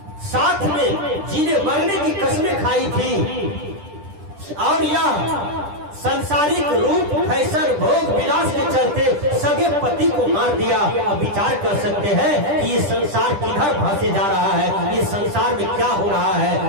साथ में जीने मरने की कसमें खाई थी और यह संसारिक रूप फैशन भोग विलास के चलते सगे पति को मार दिया। अब विचार कर सकते हैं कि ये संसार किधर भासे जा रहा है, ये संसार में क्या हो रहा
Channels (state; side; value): late; left; 10 ms